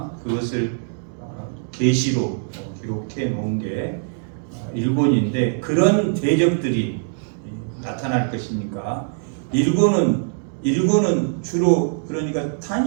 그것을 계시로 기록해 놓은 게 1권인데, 그런 대적들이 나타날 것이니까 1권은 주로 그러니까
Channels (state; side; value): silent; left; digital silence